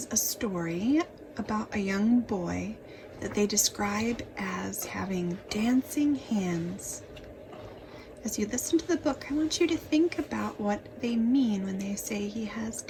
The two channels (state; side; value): identical; both; correlation 1.00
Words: a story about a young boy that they describe as having dancing hands. As you listen to the book, I want you to think about what they mean when they say he has